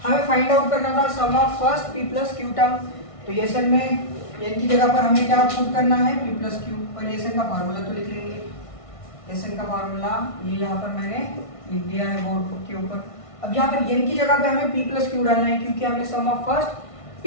हमें फाइंड आउट करना था sum of first p plus Q term, तो ये सन में n की जगह पर हमें क्या पुट करना है p प्लस क्यू, और ये सन का फार्मूला तो लिख लेंगे, ये सन का फार्मूला ये यहाँ पर मैंने लिख दिया है बोर्ड के ऊपर। अब यहाँ पर n की जगह पे हमें p प्लस क्यू डालना है, क्योंकि हमें sum of first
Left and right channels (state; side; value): late; right; 1.5 ms